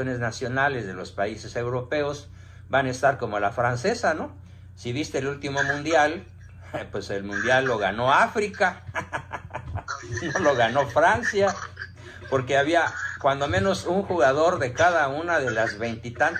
nacionales de los países europeos van a estar como la francesa, ¿no? Si viste el último mundial, pues el mundial lo ganó África, no lo ganó Francia, porque había cuando menos un jugador de cada una de las 20 y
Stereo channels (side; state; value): both; identical; correlation 1.00